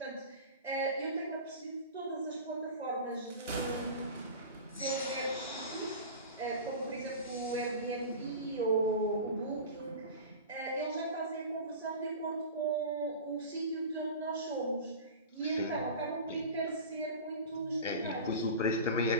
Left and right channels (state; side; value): inverted; both; correlation -0.32